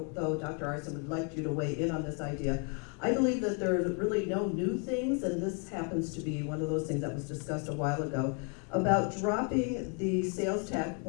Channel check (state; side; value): quieter; right; 38.7 dB